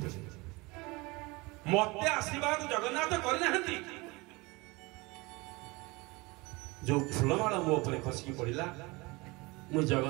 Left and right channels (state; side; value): quieter; left; 24.4 dB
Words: ମତେ ଆଶୀର୍ବାଦ ଜଗନ୍ନାଥ କରିନାହାନ୍ତି। ଯୋଉ ଫୁଲମାଳ ମୋ ଉପରେ ଖସିକି ପଡ଼ିଲା, ମୁଁ